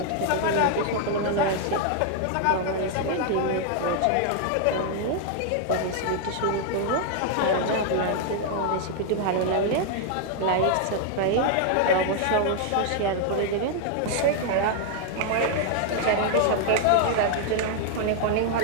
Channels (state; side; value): different; both; correlation 0.00